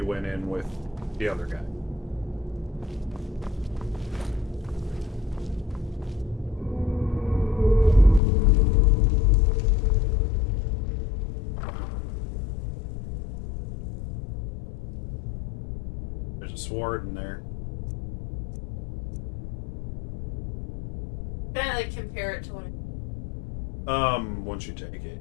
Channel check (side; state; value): right; drops out; at 8.2 s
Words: went in with the other guy. There's a sword in there. Can I, like, compare it to what Once you take it.